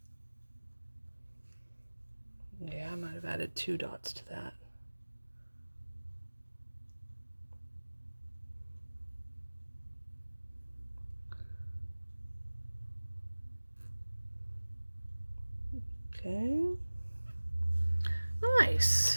Yeah, I might have added 2 dots to that. Okay.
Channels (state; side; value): inverted; both; correlation -1.00